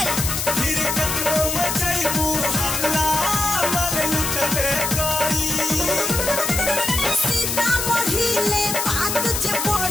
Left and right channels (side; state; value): left; noise; hiss, 1 dB below the sound